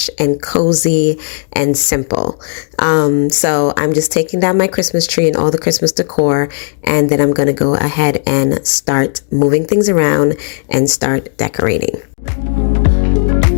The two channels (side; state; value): right; silent; digital silence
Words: and cozy and simple. So I'm just taking down my Christmas tree and all the Christmas decor, and then I'm gonna go ahead and start moving things around and start decorating.